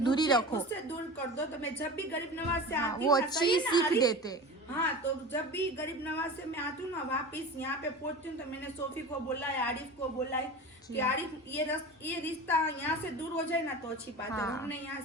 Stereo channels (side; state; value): both; normal; correlation 0.32